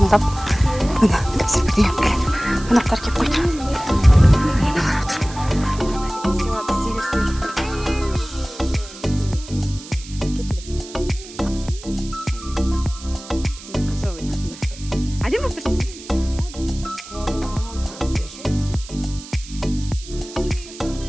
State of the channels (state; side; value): noise; right; hiss, 16 dB below the sound